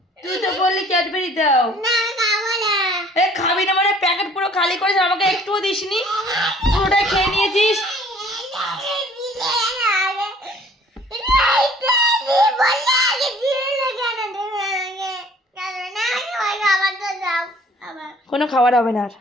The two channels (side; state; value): both; normal; correlation 0.55